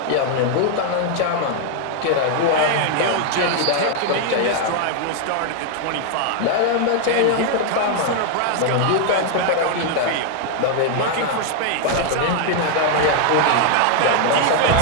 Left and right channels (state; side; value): different; both; correlation 0.00